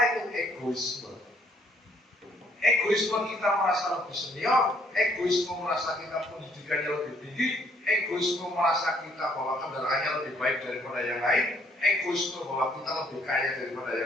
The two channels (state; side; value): normal; both; correlation 0.65